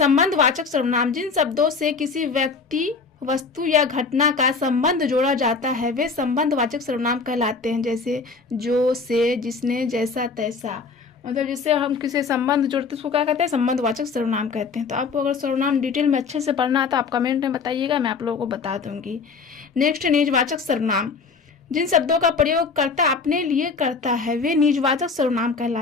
सर्वनाम। जिन शब्दों से किसी व्यक्ति, वस्तु या घटना का संबंध जोड़ा जाता है वे संबंधवाचक सर्वनाम कहलाते हैं। जैसे जो, से, जिसने, जैसा, तैसा। मतलब जिससे हम किसी संबंध जोड़ते हैं उसको क्या कहते हैं? संबंधवाचक सर्वनाम कहते हैं। तो आपको अगर सर्वनाम डिटेल में अच्छे से पढ़ना है तो आप कमेंट में बताइएगा, मैं आप लोगों को बता दूंगी। नेक्स्ट निजवाचक सर्वनाम। जिन शब्दों का प्रयोग कर्ता अपने लिए करता है वे निजवाचक सर्वनाम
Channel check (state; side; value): quieter; right; 4.7 dB